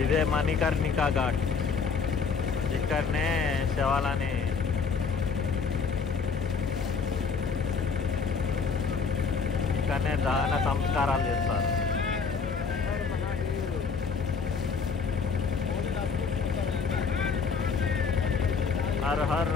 ఇదే మణికర్ణికా ఘాట్. ఇక్కడనే శవాలని ఇక్కడనే దహన సంస్కారాలు చేస్తారు. Her her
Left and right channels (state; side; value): quieter; right; 5.4 dB